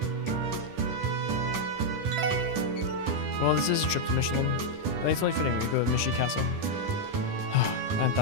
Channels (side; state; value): left; late; 10 ms